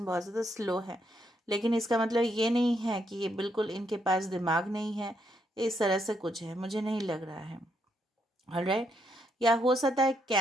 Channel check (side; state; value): both; normal; correlation 0.76